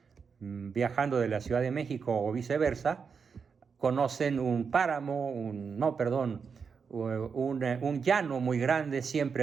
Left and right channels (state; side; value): quieter; left; 5.9 dB